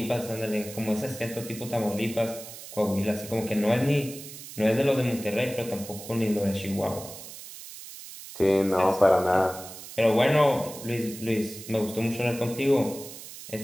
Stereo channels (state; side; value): noise; right; hiss, 13 dB below the sound